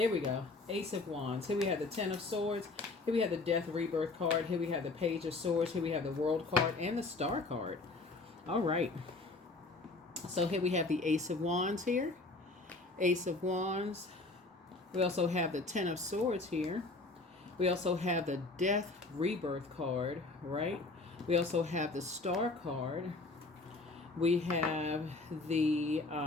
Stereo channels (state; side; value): quieter; right; 3.3 dB